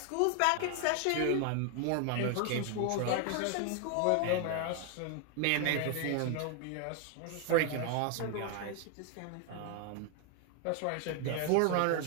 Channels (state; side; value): different; both; correlation 0.01